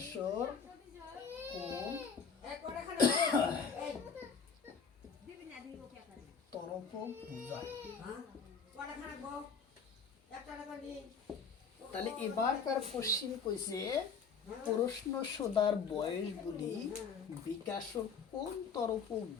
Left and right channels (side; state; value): right; quieter; 5.8 dB